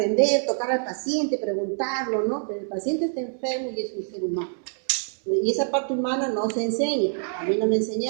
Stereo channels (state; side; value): silent; left; digital silence